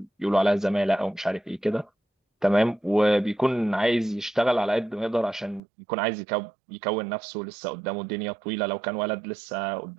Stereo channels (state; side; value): drops out; left; at 5.6 s